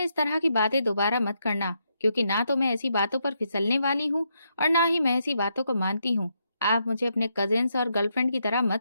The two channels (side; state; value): both; inverted; correlation -0.79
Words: इस तरह की बातें दोबारा मत करना, क्योंकि ना तो मैं ऐसी बातों पर फिसलने वाली हूँ और ना ही मैं ऐसी बातों को मानती हूँ। आप मुझे अपने कजिन्स और गर्लफ्रेंड की तरह